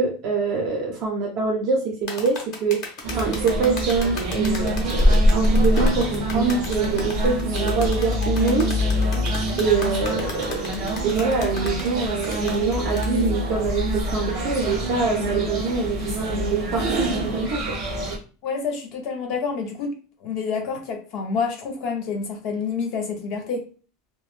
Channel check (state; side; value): normal; both; correlation 0.37